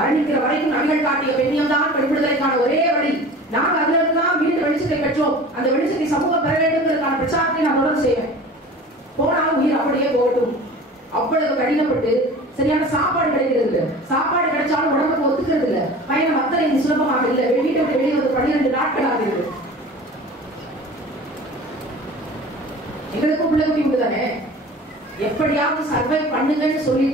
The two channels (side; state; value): both; normal; correlation 0.40